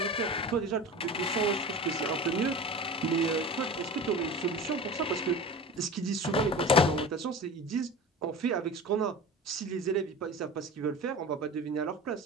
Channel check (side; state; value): both; normal; correlation 0.33